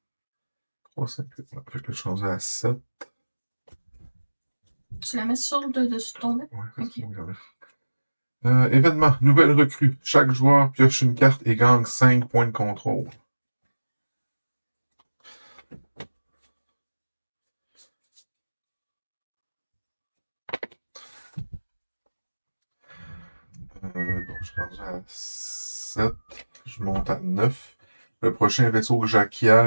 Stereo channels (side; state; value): both; inverted; correlation -1.00